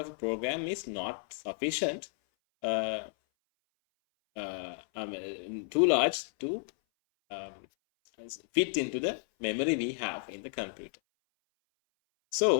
a program is not sufficient, too large to fit into the memory we have in the computer.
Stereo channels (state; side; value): silent; right; 56 dB below the other